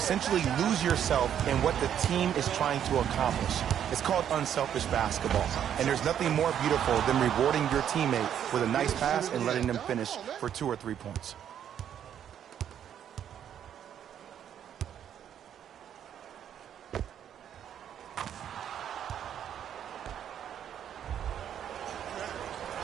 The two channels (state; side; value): quieter; left; 9.5 dB